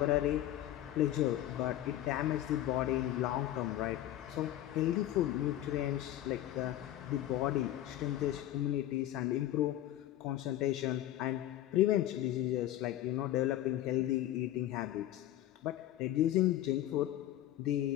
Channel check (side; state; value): right; quieter; 13.3 dB